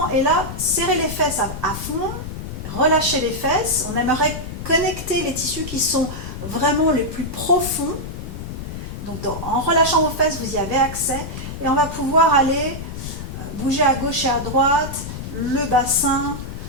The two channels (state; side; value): noise; left; rumble, 8 dB below the sound